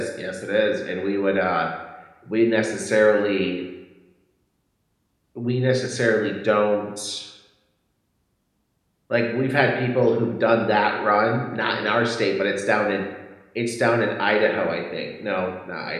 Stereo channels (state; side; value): identical; both; correlation 1.00